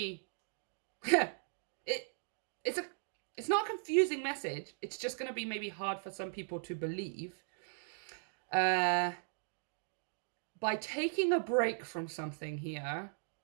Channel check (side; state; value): left; silent; digital silence